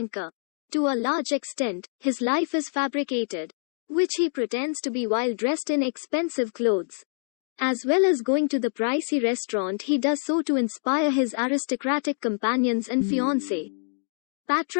To a large extent, his life is fabricated, which he pretends to be while dressed in expensive clothes. As well as going to the pricey restaurant, he does so to inspire his aristocratic companions and fiancée.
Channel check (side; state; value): right; silent; digital silence